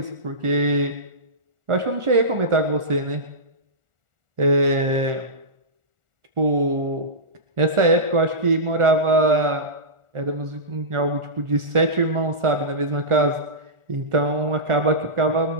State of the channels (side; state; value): left; late; 1.4 ms